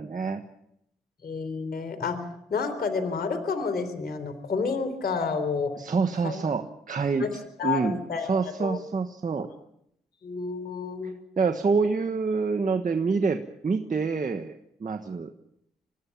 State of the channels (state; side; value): normal; both; correlation 0.63